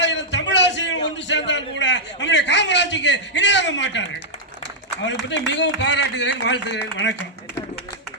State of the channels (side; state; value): both; normal; correlation -0.07